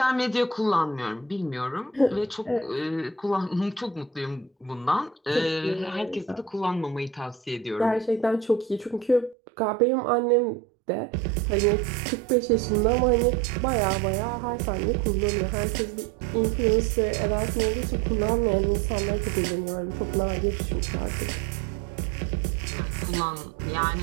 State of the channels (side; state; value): left; drops out; at 9.3 s